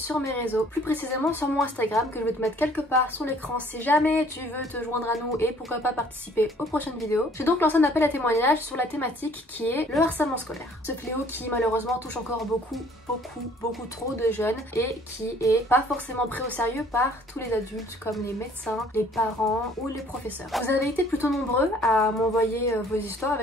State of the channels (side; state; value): both; normal; correlation 0.57